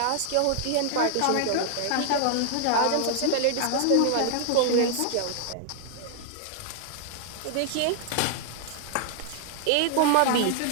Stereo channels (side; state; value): both; different; correlation 0.00